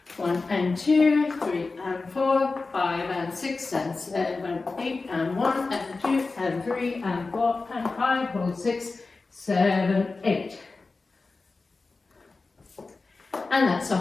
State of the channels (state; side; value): quieter; right; 3.8 dB